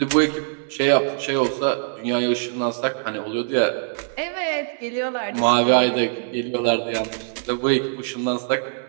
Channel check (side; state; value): left; silent; digital silence